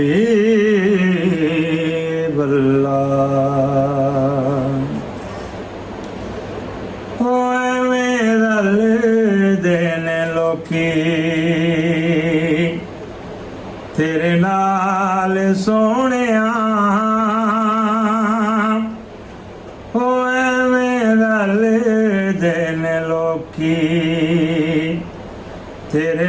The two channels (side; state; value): both; identical; correlation 1.00